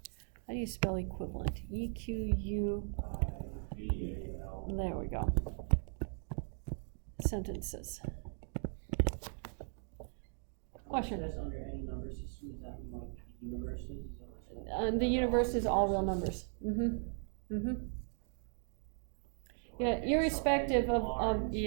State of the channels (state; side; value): silent; left; 53 dB below the other